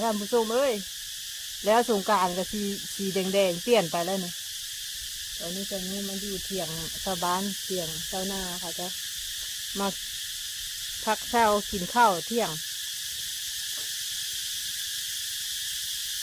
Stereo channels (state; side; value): identical; both; correlation 1.00